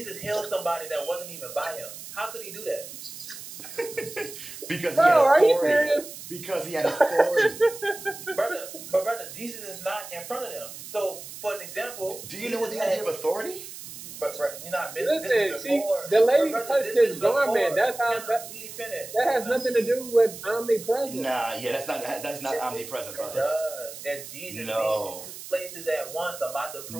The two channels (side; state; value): right; noise; hiss, 12 dB below the sound